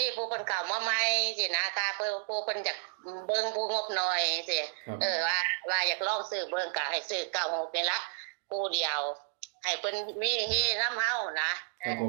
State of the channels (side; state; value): left; silent; digital silence